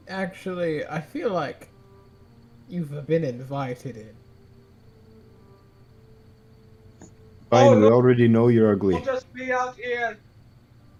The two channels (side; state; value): both; identical; correlation 1.00